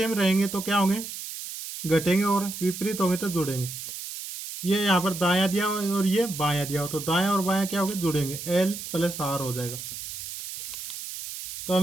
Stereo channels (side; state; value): right; noise; hiss, 9 dB below the sound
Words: रहेंगे तो क्या होंगे, घटेंगे, और विपरीत होंगे तो जुड़ेंगे। ये यहाँ पर दायां दिया हो और ये बायां दिया हो, तो दायां और बायां क्या होंगे, जुड़ेंगे, एल प्लस आर हो जाएगा। तो